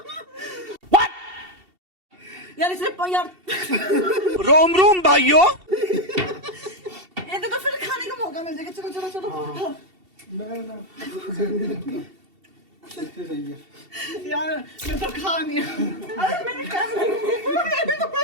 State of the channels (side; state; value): left; late; 2.7 ms